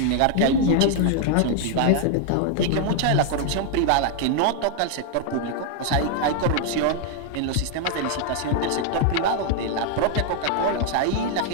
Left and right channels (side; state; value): both; different; correlation 0.00